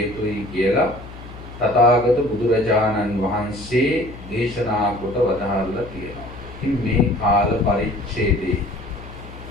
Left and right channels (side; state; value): left; noise; hum, 15 dB below the sound